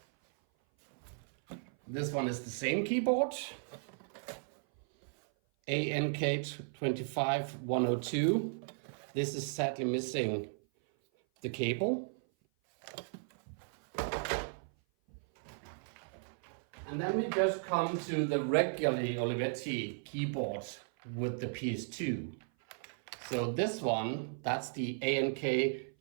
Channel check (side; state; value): left; silent; 54 dB below the other